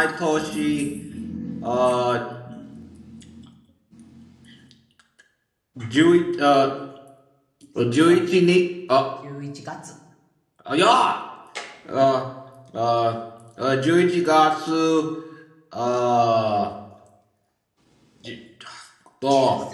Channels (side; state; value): both; identical; correlation 1.00